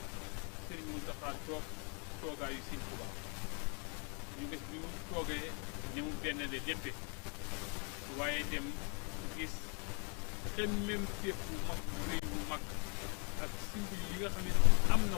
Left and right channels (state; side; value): quieter; right; 36.8 dB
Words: Serigne Mountakha toogaayu Serigne Touba ñu gis bi mu toogee ni mu benn le léppe waaye dem gis xemmem téef bu mag bu rëy bu mag ak simbil yi nga xam ne am na